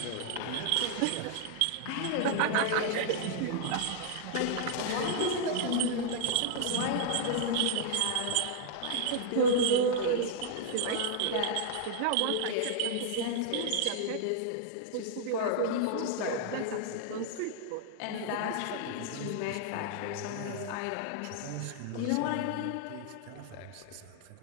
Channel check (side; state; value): both; different; correlation -0.01